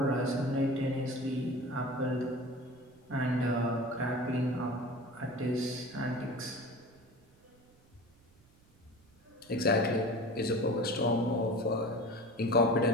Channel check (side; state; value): right; noise; rumble, 30 dB below the sound